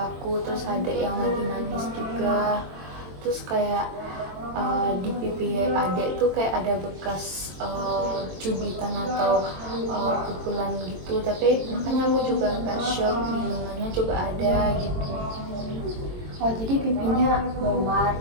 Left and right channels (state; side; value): late; left; 22 ms